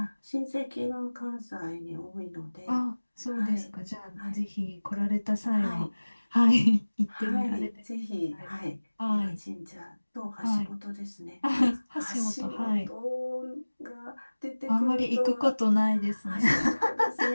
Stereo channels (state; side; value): inverted; both; correlation -1.00